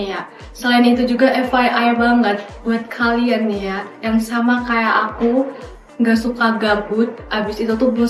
ya. Selain itu juga FYI banget buat kalian nih ya yang sama kayak aku nggak suka gabut, abis itu tuh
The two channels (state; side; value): identical; both; correlation 1.00